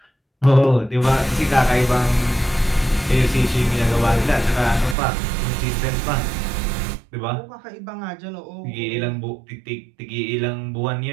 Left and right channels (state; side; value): drops out; left; at 5.0 s